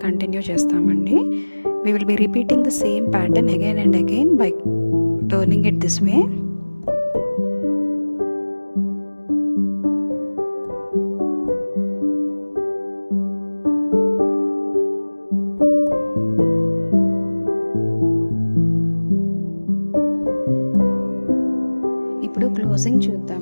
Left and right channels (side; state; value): both; inverted; correlation -1.00